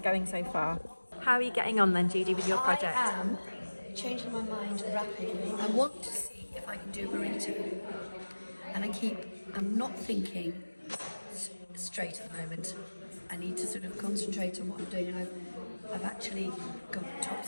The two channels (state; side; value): inverted; both; correlation -1.00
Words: so far. How are you getting on then, Judy, with your project? I am changing my mind rapidly. I want to see if I can do a burrito. And I'm not thinking straight at the moment. I need to sort of concentrate on what I'm doing. And I've actually got top